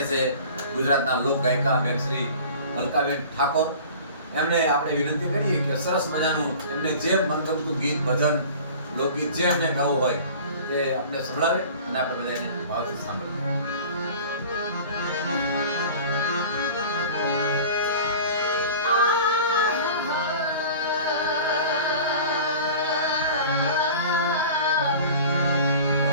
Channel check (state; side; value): inverted; both; correlation -0.41